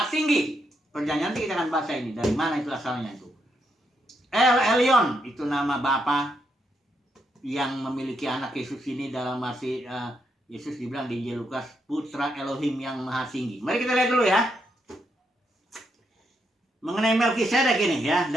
tinggi. Perjanjian nanti kita akan baca ini, dari mana itu asalnya itu. El Elyon, itu nama Bapa yang memiliki anak Yesus ini, dalam arti Yesus dibilang di Injil Lukas, putra Elohim yang maha tinggi. Mari kita lihat dulu, ya. Mengenai Melkisedek ini, ya,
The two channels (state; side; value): normal; both; correlation 0.79